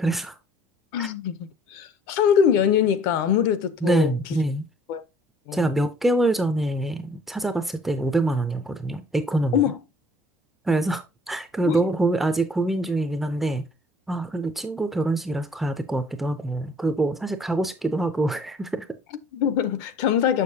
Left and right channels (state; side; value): normal; both; correlation 0.55